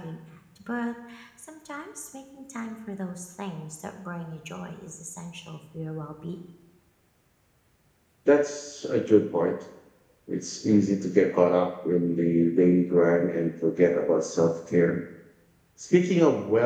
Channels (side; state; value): both; identical; correlation 1.00